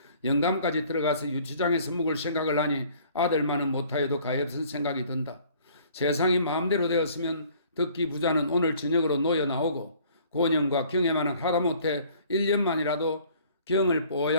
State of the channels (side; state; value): both; inverted; correlation -0.55